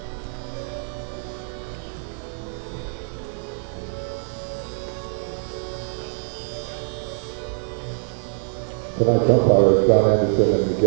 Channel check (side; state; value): left; silent; 63 dB below the other